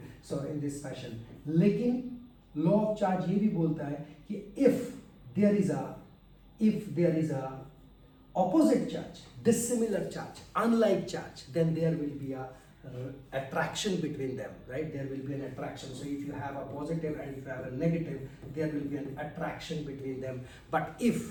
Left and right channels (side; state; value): both; identical; correlation 1.00